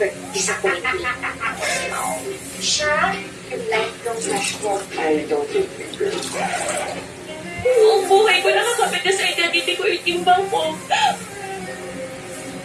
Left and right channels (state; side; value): identical; both; correlation 1.00